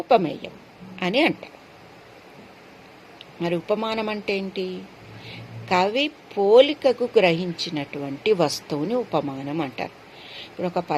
అని అంటారు. మరి ఉపమానం అంటే ఏంటి, కవి పోలికకు గ్రహించినటువంటి వస్తువుని ఉపమానం అంటారు. ఇప్పుడు ఒక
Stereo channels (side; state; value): both; identical; correlation 1.00